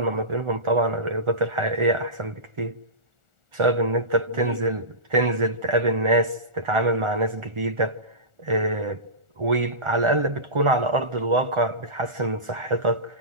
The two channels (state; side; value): late; left; 1.4 ms